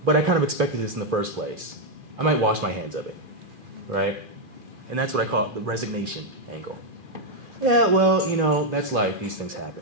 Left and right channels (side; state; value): left; late; 2.4 ms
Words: but I kind of expected this in the first place. I might wash my hands of it, right? And that's what I call the resignation angle. Yeah, well, that's life. These things